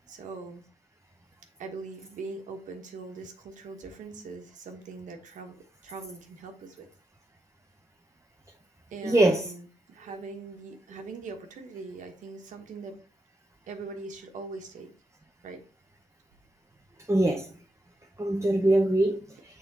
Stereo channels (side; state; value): both; normal; correlation 0.85